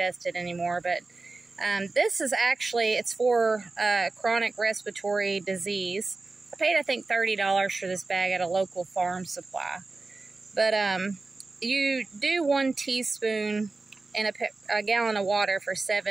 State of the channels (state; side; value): quieter; left; 3.6 dB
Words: anymore. But this is actually, it's for chronic respiratory disease. I paid, I think, $30 for this bag at a local farm supply. But you do 1 teaspoon in a gallon of water for